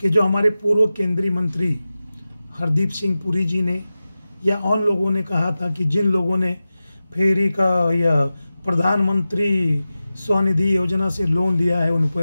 जो हमारे पूर्व केंद्रीय मंत्री हरदीप सिंह पुरी जी ने या उन लोगों ने कहा था कि जिन लोगों ने फेरी का या प्रधानमंत्री स्वनिधि योजना से लोन लिया है उन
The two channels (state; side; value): inverted; both; correlation -0.94